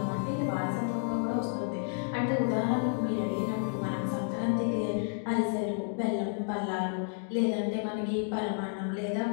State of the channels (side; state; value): right; silent; 57 dB below the other